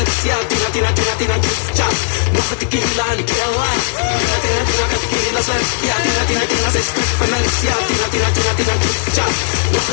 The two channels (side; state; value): right; silent; 58 dB below the other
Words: Ja, Tina, Tina, Tina, Tina, tja. Nog 'n tequila en ek kill life. Tina, Tina, Tina kan tequila sluk. Ja, Tina, Tina, Tina, sy skrik van niks. Ja, Tina, Tina, Tina, Tina, tja. Nog